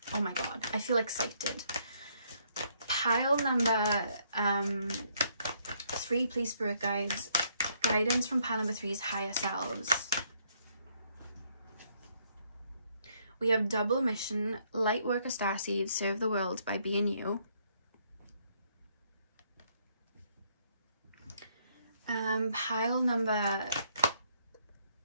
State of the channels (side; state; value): both; inverted; correlation -0.70